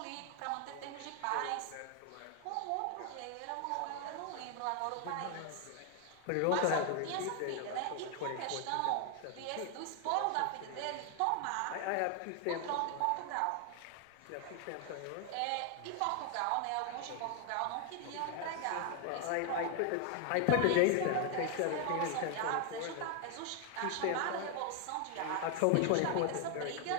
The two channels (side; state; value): both; different; correlation 0.00